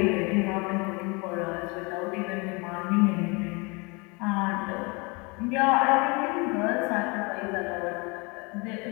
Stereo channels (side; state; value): right; quieter; 28.5 dB